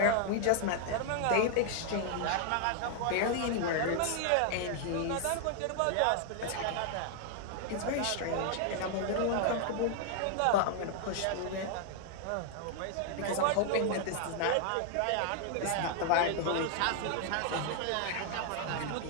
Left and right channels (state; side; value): different; both; correlation 0.00